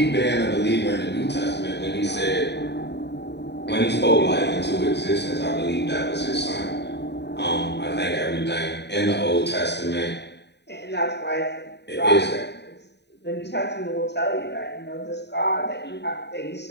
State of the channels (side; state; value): right; late; 0.50 ms